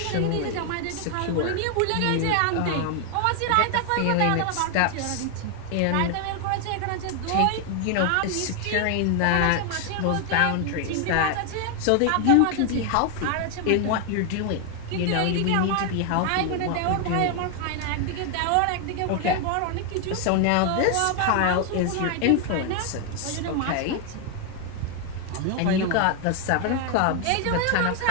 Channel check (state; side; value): different; both; correlation 0.01